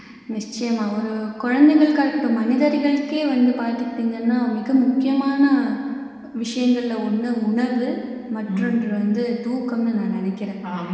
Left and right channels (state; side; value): identical; both; correlation 1.00